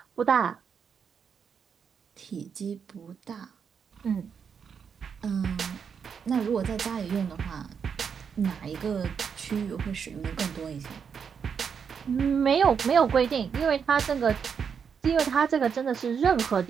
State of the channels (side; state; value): left; quieter; 6.8 dB